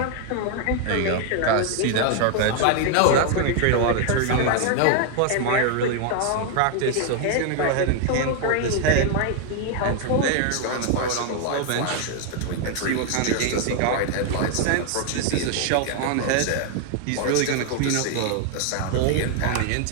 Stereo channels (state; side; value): different; both; correlation 0.00